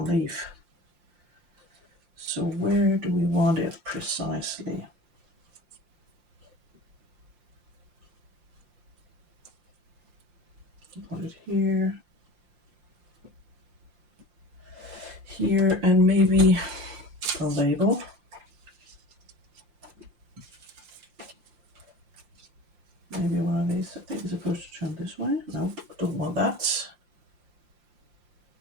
leaf. So where do we want it precisely? Put it here. Here, and maybe a label. Maybe one of these. I think it's supposed to turn this way. No, don't want that.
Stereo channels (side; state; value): left; late; 5.7 ms